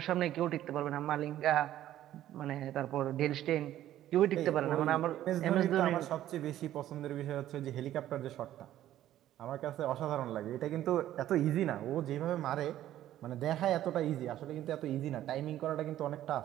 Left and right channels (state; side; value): quieter; left; 12.8 dB